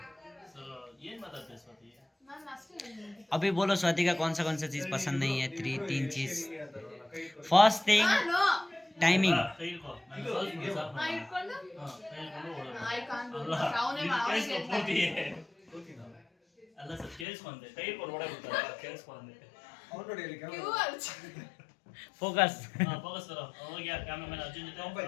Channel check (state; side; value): drops out; right; at 17.2 s